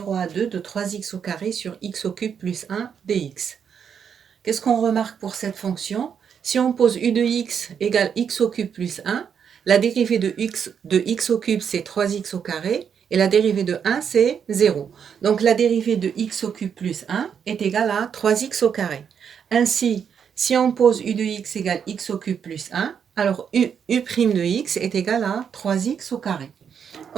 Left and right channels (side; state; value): left; quieter; 7.5 dB